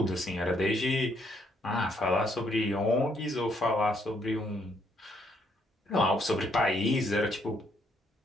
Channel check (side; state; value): both; normal; correlation 0.71